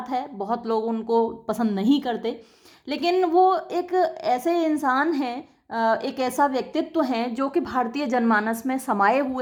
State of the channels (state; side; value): identical; both; correlation 1.00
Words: है, बहुत लोग उनको पसंद नहीं करते, लेकिन वो एक ऐसे इंसान हैं, एक ऐसा व्यक्तित्व हैं जो कि भारतीय जनमानस में समाये